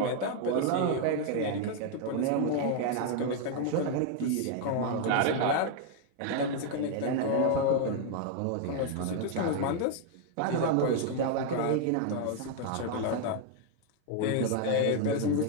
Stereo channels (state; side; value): different; both; correlation 0.00